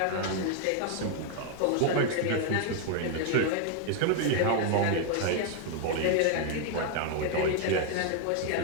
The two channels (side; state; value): both; different; correlation 0.01